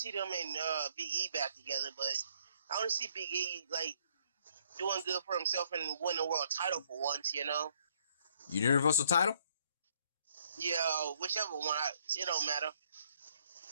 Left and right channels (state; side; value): inverted; both; correlation -0.65